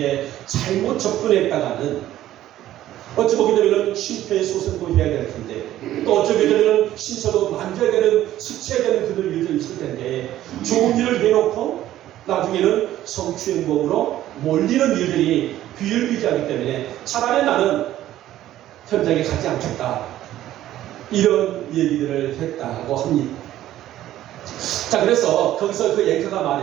잘못 접근했다가는 어찌 보게 되면 심폐소생도 해야 될 텐데 또 어찌 보게 되면 신체도 만져야 되는, 스쳐야 되는 그들 일도 있을 텐데 좋은 일을 해놓고 나중에는 성추행범으로 몰리는 일들이 비일비재하기 때문에 차라리 나는 현장에 가지 않겠다, 이런 얘기들을 했다고 합니다. 자, 그래서 거기서 그 앵커가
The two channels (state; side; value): quieter; left; 13.4 dB